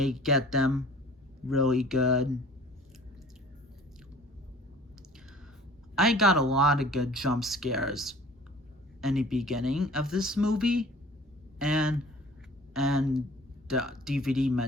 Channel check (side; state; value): both; normal; correlation 0.48